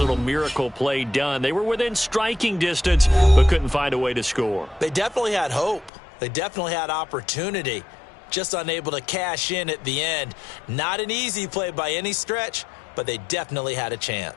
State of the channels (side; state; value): right; drops out; at 5.9 s